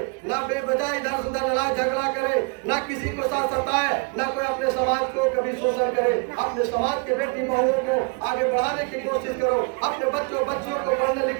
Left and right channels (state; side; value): quieter; left; 34.1 dB